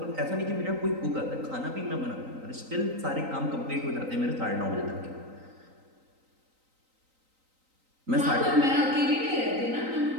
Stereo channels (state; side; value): late; left; 3.9 ms